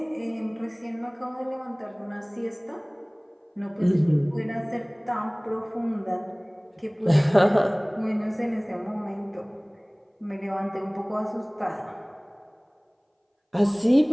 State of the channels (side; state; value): both; identical; correlation 1.00